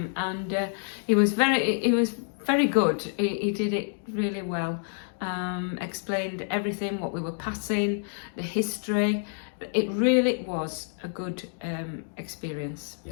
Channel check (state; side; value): silent; right; digital silence